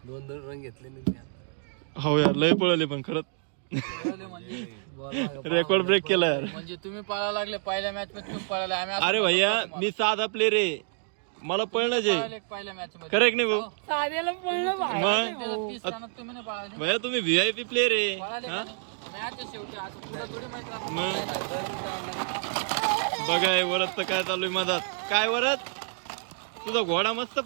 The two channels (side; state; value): left; silent; digital silence